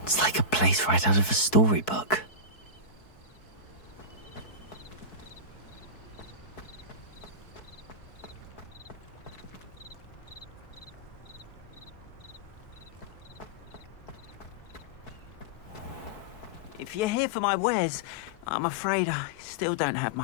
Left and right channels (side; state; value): right; late; 4.6 ms